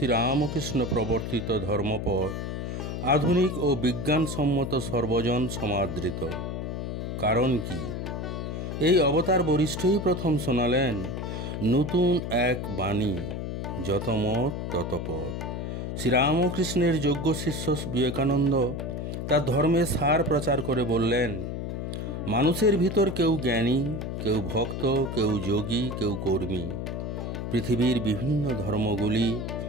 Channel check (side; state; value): left; noise; hum, 4 dB below the sound